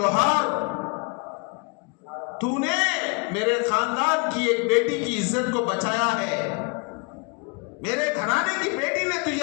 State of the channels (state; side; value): quieter; right; 33.0 dB